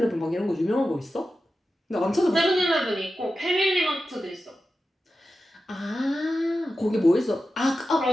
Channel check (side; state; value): both; normal; correlation 0.92